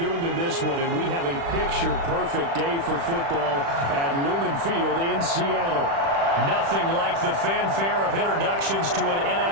than this one, and we have a picture-perfect day for football at Lumen Field in Seattle. Nothing like the fanfare of introductions to an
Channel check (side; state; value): left; late; 35 ms